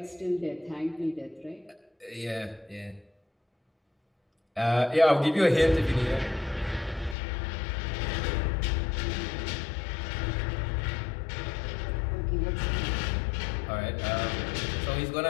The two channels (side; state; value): right; drops out; at 7.2 s